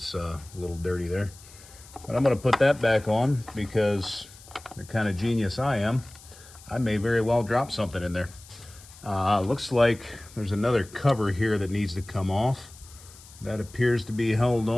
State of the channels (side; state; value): left; noise; hiss, 21 dB below the sound